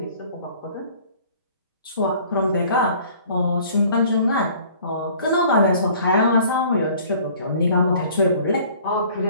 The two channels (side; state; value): both; inverted; correlation -0.52